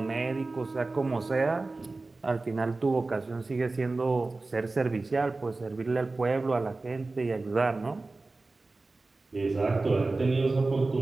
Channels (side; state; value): left; quieter; 3.4 dB